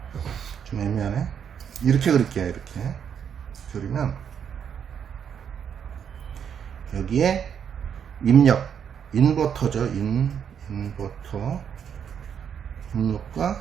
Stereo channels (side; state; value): left; quieter; 8.0 dB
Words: 좀 애매하네. 이렇게 그릴게요. 이렇게 그리면 여기에 입력 인버터죠. 인버터 입력과